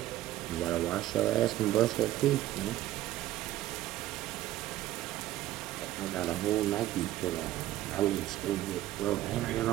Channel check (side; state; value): left; quieter; 14.4 dB